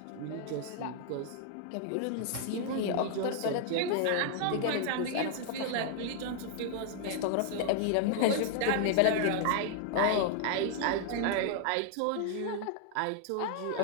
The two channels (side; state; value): both; different; correlation -0.01